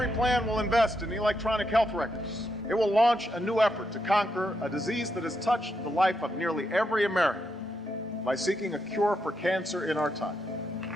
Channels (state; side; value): normal; both; correlation 0.81